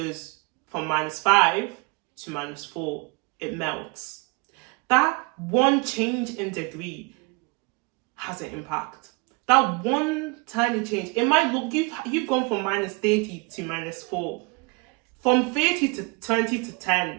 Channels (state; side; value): quieter; left; 30.2 dB